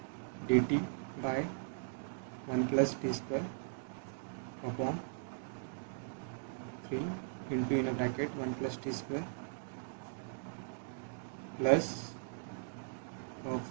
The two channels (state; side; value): silent; left; digital silence